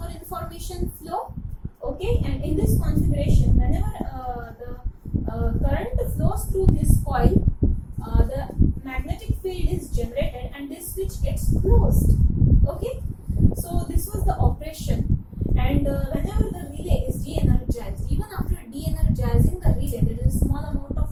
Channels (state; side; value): identical; both; correlation 1.00